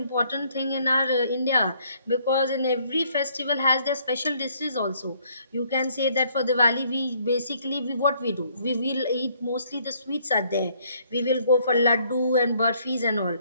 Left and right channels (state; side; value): inverted; both; correlation -0.65